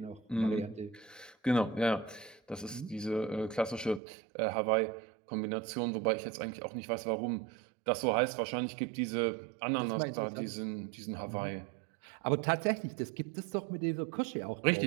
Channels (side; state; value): left; drops out; at 4.0 s